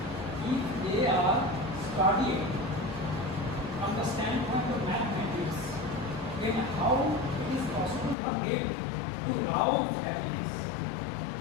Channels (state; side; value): drops out; right; at 8.2 s